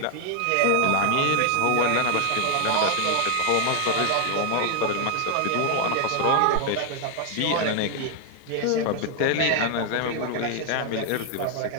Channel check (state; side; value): different; both; correlation 0.00